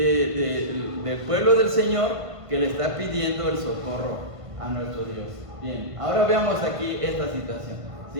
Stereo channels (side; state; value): left; late; 1.5 ms